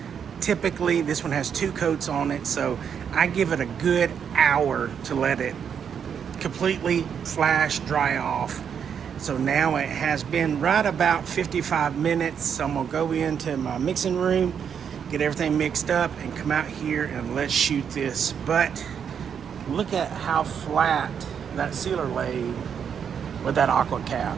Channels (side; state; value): left; quieter; 7.6 dB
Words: Typically, this one has 2 coats on it, so I give it a good hour to let it completely flash dry off. So now it has been right about 55 minutes. So I'm gonna go into my mixing room, get everything mixed up, and come out here and let's shoot this. But look at how flat that sealer laid with that aqua cap.